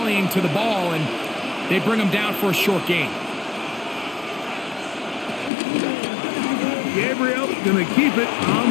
to the ball, and they bring him down for a short gain. Gabriel going to keep it on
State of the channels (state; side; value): drops out; right; at 5.5 s